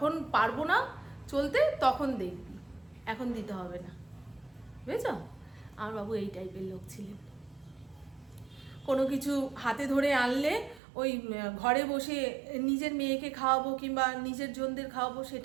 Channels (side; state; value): left; drops out; at 10.8 s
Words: পারবো না চলতে তখন দেখবি, এখন দিতে হবে না। বুঝেছ? আমার বাবু এই টাইপের লোক ছিলেন। কোনো কিছু হাতে ধরে আনলে ওই ঘরে বসে নিজের মেয়েকে খাওয়াবো কিংবা নিজের জনদের খাওয়াবো